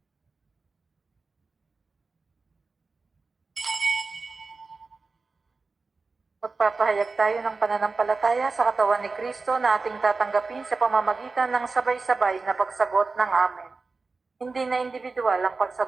Magpapahayag tayo ng pananampalataya sa katawan ni Kristo na ating tatanggapin sa pamamagitan ng sabay-sabay na pagsagot ng Amen. Hindi na individual ang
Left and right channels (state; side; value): quieter; left; 4.0 dB